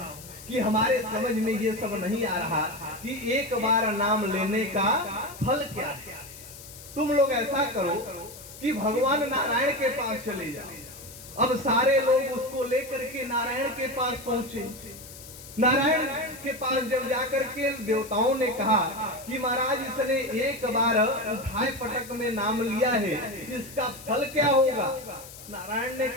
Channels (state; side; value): noise; left; hiss, 16 dB below the sound